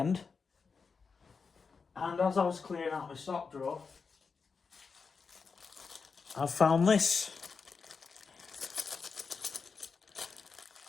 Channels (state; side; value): quieter; right; 5.1 dB